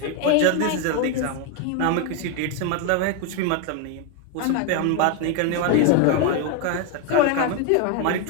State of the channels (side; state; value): both; different; correlation 0.01